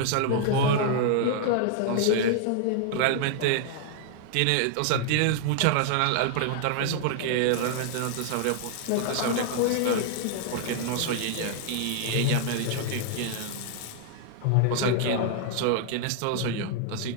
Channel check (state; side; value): different; both; correlation 0.00